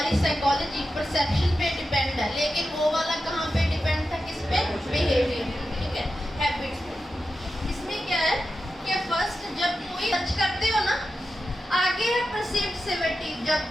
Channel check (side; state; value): both; normal; correlation 0.90